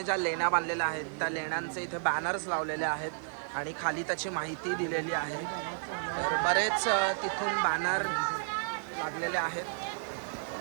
ज्या लेण्या बांधलेल्या आहेत त्या लेण्यांचे इथे बॅनर्स लावलेले आहेत आणि खाली त्याची माहिती दिलेली आहे. तर बरेच तिथून बॅनर लागलेले आहेत.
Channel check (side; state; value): left; silent; digital silence